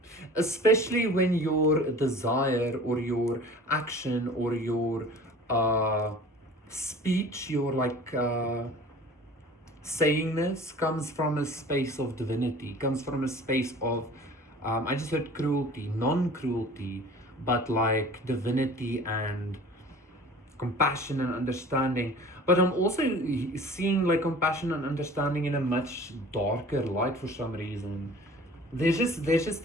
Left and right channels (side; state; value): both; normal; correlation 0.44